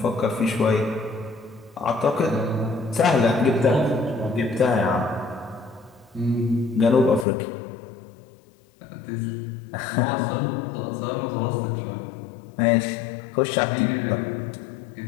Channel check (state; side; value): drops out; right; at 7.2 s